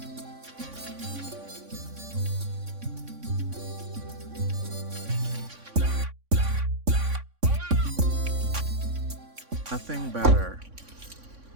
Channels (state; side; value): late; left; 3.6 ms